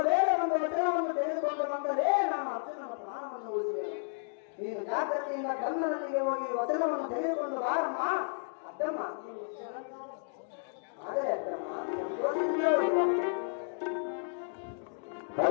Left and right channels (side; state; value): right; silent; digital silence